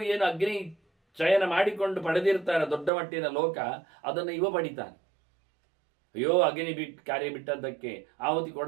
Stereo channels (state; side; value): drops out; left; at 2.9 s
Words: ಏನು ಅಗ್ನಿ ಚಯನ ಮಾಡಿಕೊಂಡು ಪಡೆದಿರ್ತಾರೆ ದೊಡ್ಡ ಮಟ್ಟಿನ ಲೋಕ, ಅದನ್ನು ಇವ ಪಡಿತಾನೆ. ಅಯ್ಯೋ ಅಗ್ನಿ ಕಾರ್ಯ ಬಿಟ್ಟದ್ದಕ್ಕೆ, ಆಹುತಿ